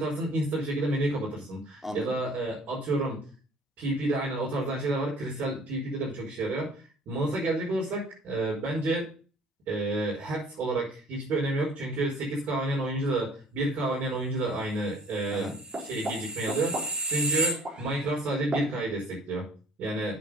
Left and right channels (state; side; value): normal; both; correlation 0.53